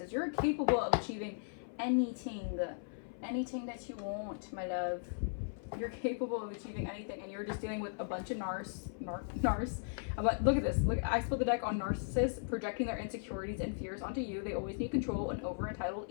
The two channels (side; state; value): right; silent; 53 dB below the other